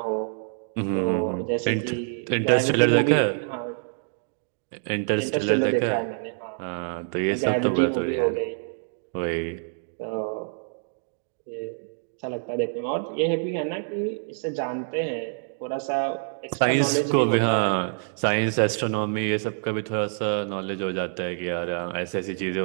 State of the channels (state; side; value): silent; left; digital silence